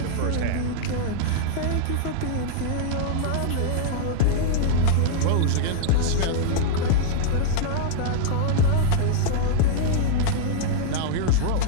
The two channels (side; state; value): both; different; correlation -0.01